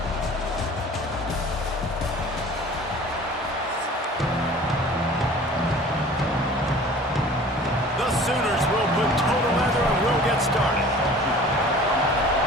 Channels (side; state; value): both; normal; correlation 0.45